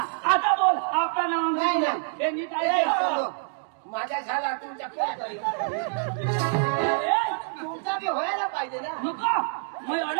आता बोल आपलं नाव नाही, नाही. हे नीट ए, आहे चलो. माझा झाला तुमच्या कोण करेल तुमचा बी व्हायला पाहिजे ना नको मी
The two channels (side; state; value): left; silent; digital silence